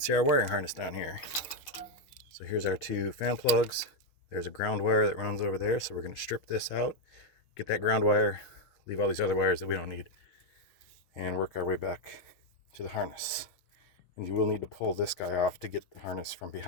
our wiring harness down here. So here's our two fan plugs. There's a ground wire that runs over there, so we're going to strip this out, get that ground wire, leave all these other wires that we don't need, and work our way back to the harness. And you will need to pull this guy off to get the harness from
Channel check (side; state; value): right; late; 6.5 ms